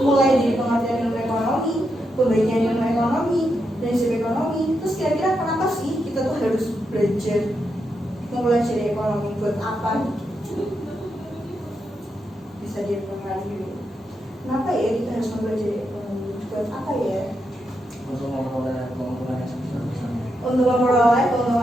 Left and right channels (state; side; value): normal; both; correlation 0.83